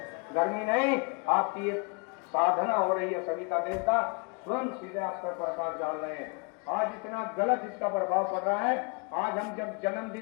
गर्मी नहीं, आपकी ये साधना हो रही है। सभी का देवता स्वयं सीधे आप पर प्रकाश डाल रहे हैं। आज इतना गलत इसका प्रभाव पड़ रहा है। आज हम जब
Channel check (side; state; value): right; quieter; 33.9 dB